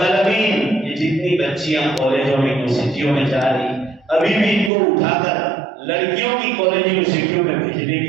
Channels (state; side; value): drops out; left; at 4.7 s